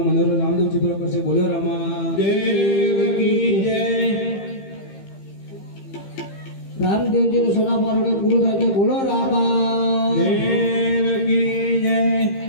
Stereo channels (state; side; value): late; right; 15 ms